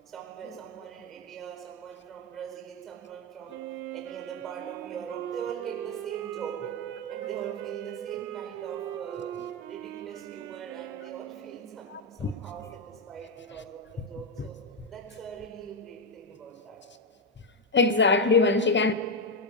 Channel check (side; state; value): both; normal; correlation 0.05